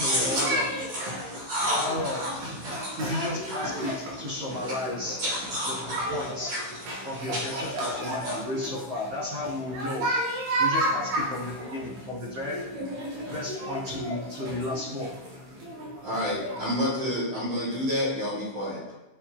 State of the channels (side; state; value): left; late; 15 ms